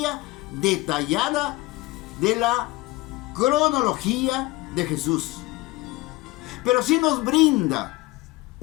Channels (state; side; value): quieter; right; 20.6 dB